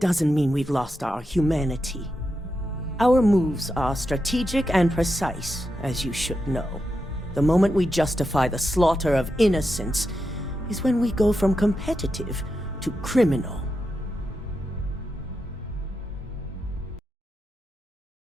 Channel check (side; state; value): both; normal; correlation 0.87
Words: mean we've lost our humanity. Our moves are strategic and precise, as you should know. The moment we justify the slaughter of innocents is when we go from competitive to criminal.